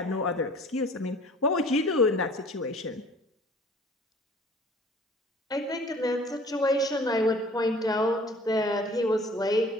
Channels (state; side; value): normal; both; correlation 0.50